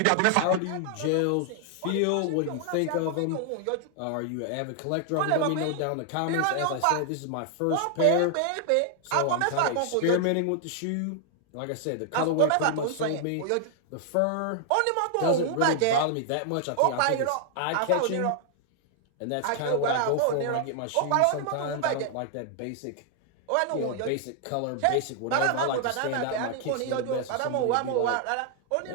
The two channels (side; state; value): both; different; correlation 0.00